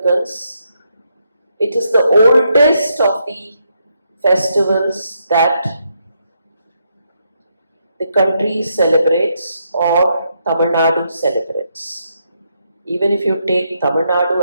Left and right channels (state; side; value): inverted; both; correlation -0.79